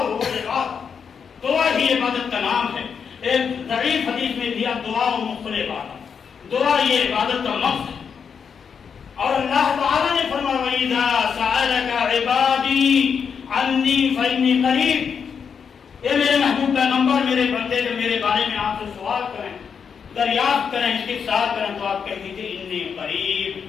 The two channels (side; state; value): right; quieter; 6.6 dB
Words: عبادت، دعا ہی عبادت کا نام ہے. ایک ضعیف حدیث میں دیا دعا و مخل عبادت، دعا یہ عبادت کا مقصد ہے. اور اللہ تعالیٰ نے فرمایا وَإِذَا سَأَلَكَ عِبَادِي عَنِّي فَإِنِّي قَرِيبٌ، اے میرے محبوب پیغمبر، میرے بندے جو میرے بارے میں آپ سے سوال کریں، دریافت کریں، استفسار کریں تو آپ کہہ دیجیے انی قریب،